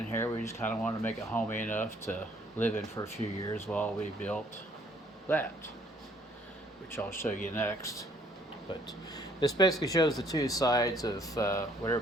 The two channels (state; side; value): normal; both; correlation 0.63